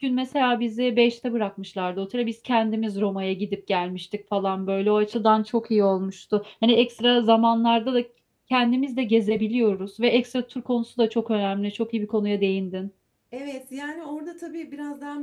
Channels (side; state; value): both; identical; correlation 1.00